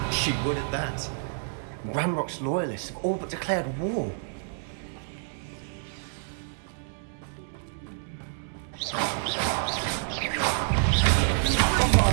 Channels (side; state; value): left; silent; 59 dB below the other